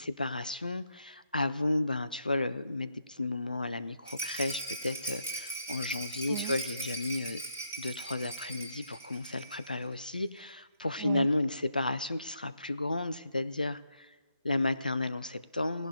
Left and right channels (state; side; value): inverted; both; correlation -0.79